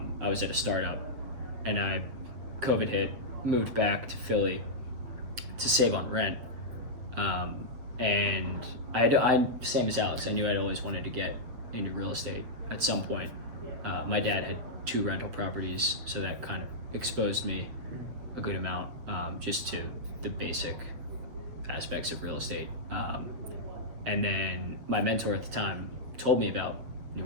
was at a startup, and COVID hit, moved back to Philly to save on rent, and I same as Alex. I knew I'd always wanted to get into real estate at some point. My dad had 2 rental properties, so that kind of exposed me a good amount, just to the basic aspects of real estate. And then my mentor at the time told me about New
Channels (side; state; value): left; late; 8.0 ms